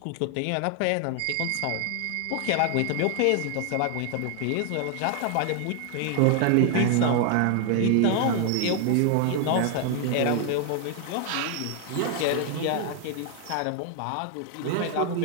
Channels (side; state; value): both; different; correlation 0.00